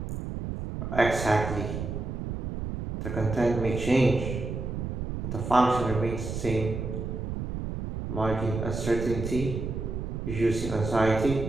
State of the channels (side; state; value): right; noise; rumble, 5 dB below the sound